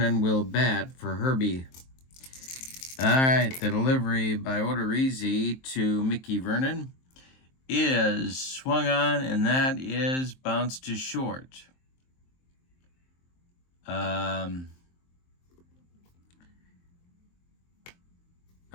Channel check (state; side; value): late; right; 23 ms